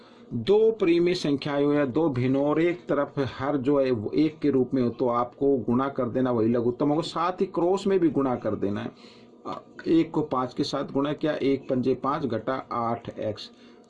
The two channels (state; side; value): identical; both; correlation 1.00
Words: 2 परिमेय संख्याएं हो या 2 भिन्न और एक तरफ हर जो है वो 1 के रूप में हो, तो आपको गुणा कर देना, वही लघुत्तम होगा। साथ ही क्रॉस में भी गुणा कर देना है। 1 को 5 के साथ गुणा किया, 1 पंजे 5 घटा 8x,